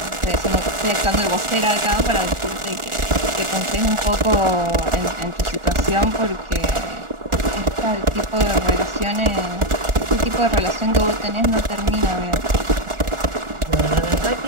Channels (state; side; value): late; left; 1.4 ms